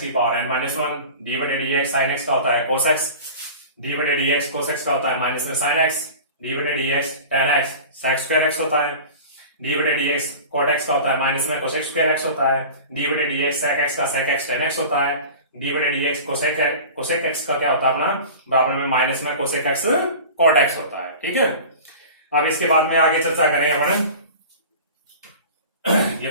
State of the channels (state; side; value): inverted; both; correlation -0.37